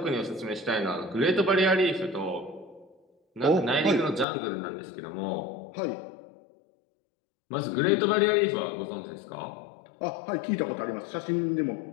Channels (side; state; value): right; drops out; at 4.2 s